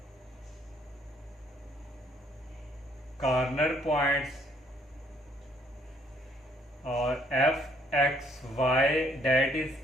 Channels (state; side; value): normal; both; correlation 0.66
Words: कॉर्नर पॉइंट्स और f(x,y) डेट